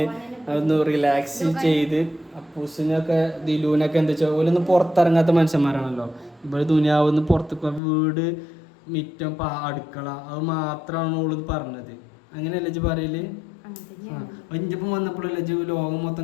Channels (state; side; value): drops out; right; at 7.8 s